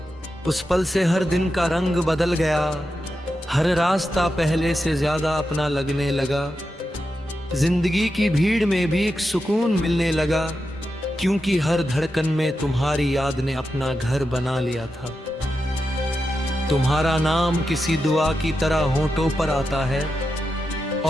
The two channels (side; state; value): both; normal; correlation 0.89